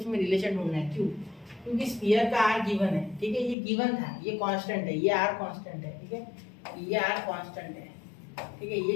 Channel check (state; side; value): drops out; right; at 3.6 s